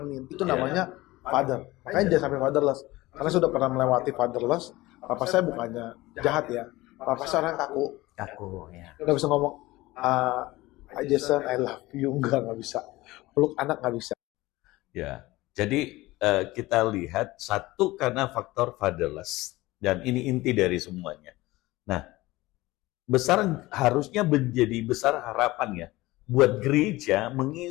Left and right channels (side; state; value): right; quieter; 19.3 dB